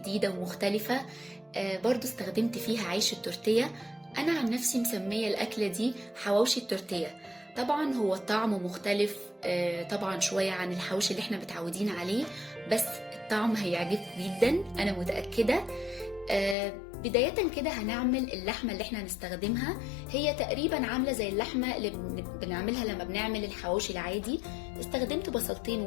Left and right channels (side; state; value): right; drops out; at 16.6 s